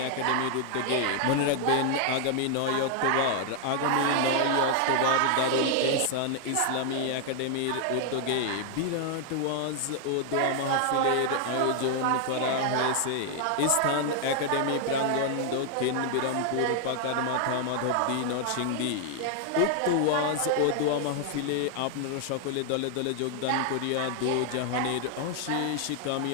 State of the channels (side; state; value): both; different; correlation 0.00